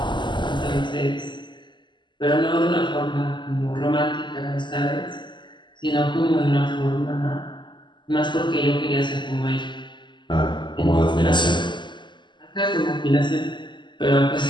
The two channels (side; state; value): right; late; 0.22 ms